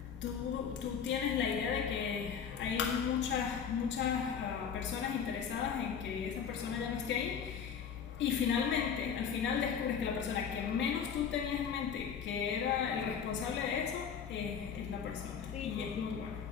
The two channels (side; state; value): right; quieter; 7.3 dB